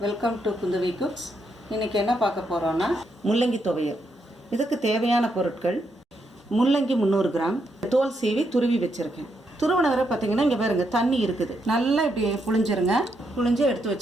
welcome to Kundavai cooks. இன்றைக்கி என்ன பார்க்க போகிறோன்னா முள்ளங்கி துவையல். இதுக்கு தேவையான பொருட்கள்: முள்ளங்கி 300 கிராம், தோல் சீவி துருவி வச்சுருக்கேன். துருவன வரை பார்த்திங்கன்னா இங்கே பாருங்க தண்ணி இருக்குது, நல்லா இப்படி புழிஞ்சிருங்க. புழிஞ்சு எடுத்து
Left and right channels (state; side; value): normal; both; correlation 0.79